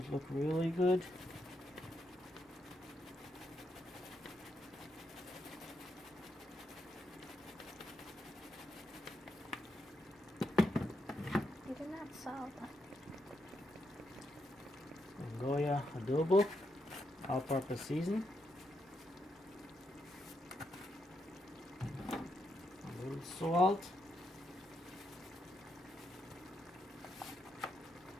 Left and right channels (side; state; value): both; normal; correlation 0.82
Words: look really good. You did not salt. Goya adobo, all-purpose seasoning. A little salt.